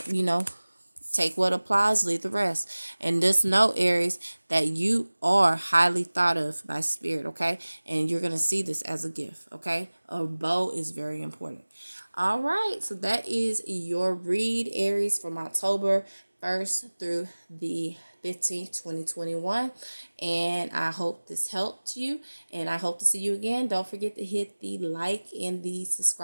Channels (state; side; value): inverted; both; correlation -1.00